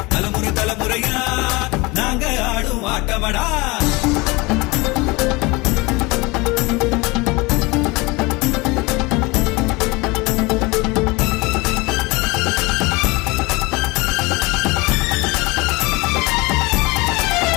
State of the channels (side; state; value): right; quieter; 24.4 dB